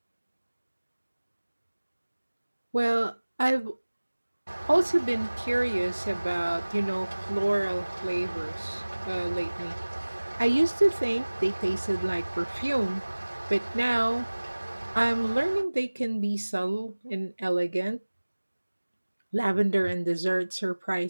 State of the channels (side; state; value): both; inverted; correlation -1.00